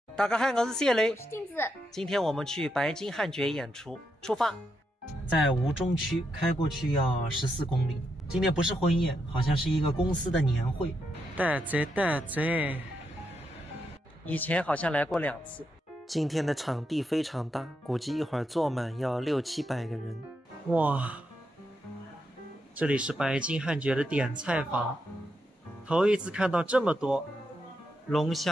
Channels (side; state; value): both; normal; correlation 0.83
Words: 大家好，我是谢雷，我是镜子。今天我们去白金汉爵演出，出发。在吴中区开过去要14公里。今天不是婚宴，好像是一个公司的年会。带贼，以前好像来过2次。今天的场地非常大，估计一会儿坐满要600-700个人。哇，这里是白金汉爵的点菜房，头一次看到这么多龙